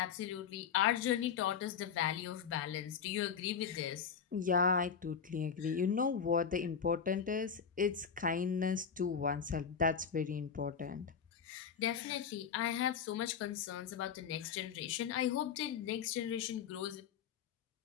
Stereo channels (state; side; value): quieter; right; 6.9 dB